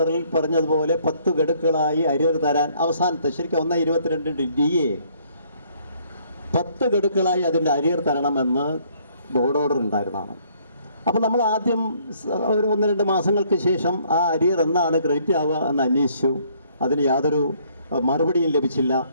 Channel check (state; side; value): inverted; both; correlation -0.64